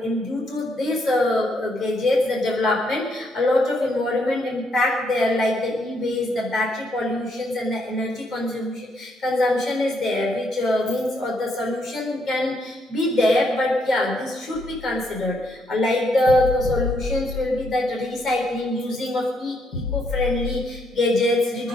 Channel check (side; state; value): both; normal; correlation 0.74